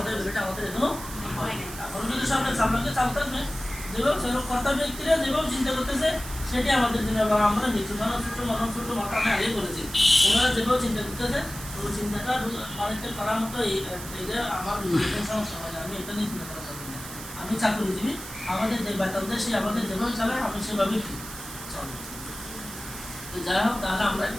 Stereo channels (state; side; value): noise; right; hiss, 12 dB below the sound